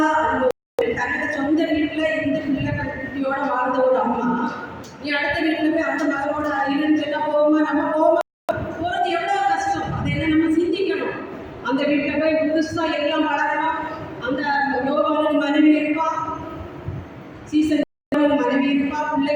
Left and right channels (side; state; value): both; identical; correlation 1.00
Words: தன்னோட சொந்த வீட்டில் இருந்து பிள்ளை குட்டியோட வாழ்ந்த ஒரு அம்மா, நீ அடுத்த வீட்டில் போய் அந்த மகளோட இருன்னு சொன்னால் போகுமா? நம்ம போகுமா? போகிறது எவ்வளோ கஷ்டம். அதை என்ன நம்ம சிந்திக்கணும். அந்த வீட்டில் போய் புதுசாக எல்லாம் வளரணும். அந்த யோகாவின் மனைவி இருப்பா, சீசன் மனைவி இருப்பா,